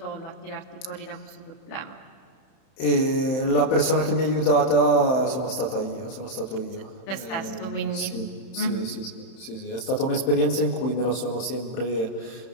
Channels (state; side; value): late; right; 31 ms